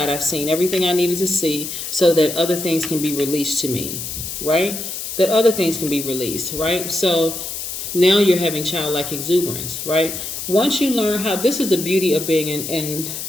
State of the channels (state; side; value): noise; left; hiss, 6 dB below the sound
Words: I've seen everything I needed to see so that other things can be released to me, right? That other things can be released, right? So now you're having childlike exuberance, right? Once you learn how, this is the beauty of being in